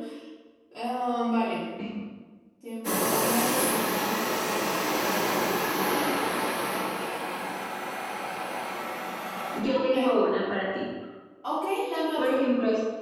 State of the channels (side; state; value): both; identical; correlation 1.00